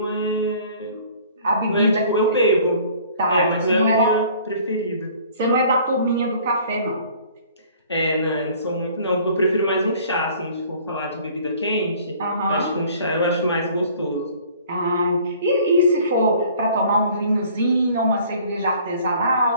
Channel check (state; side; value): inverted; both; correlation -0.52